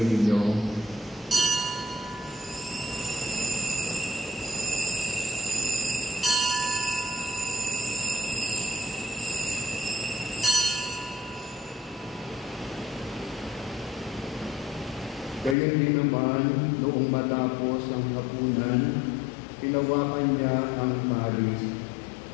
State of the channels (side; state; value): right; drops out; at 15.6 s